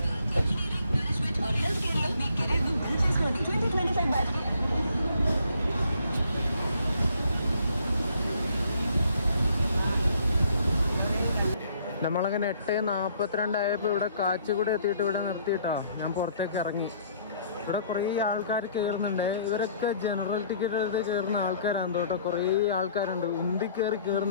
നമ്മളങ്ങനെ 8:42 ആയപ്പോൾ ഇവിടെ കാച്ചിക്കുടി എത്തിയിട്ട് ഇവിടെ നിർത്തിയിട്ടോ ഞാൻ പുറത്തേക്ക് ഇറങ്ങി. ഇവിടെ കുറേ ആൾക്കാർ കയറുന്നുണ്ട്. ഇവരൊക്കെ ജനറൽ ടിക്കറ്റ് എടുത്ത് കയറുന്ന ആൾക്കാരാണ് കേട്ടോ. കുറേ ആൾക്കാരുണ്ട്, ഉന്തി കയറി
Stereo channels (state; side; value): inverted; both; correlation -0.62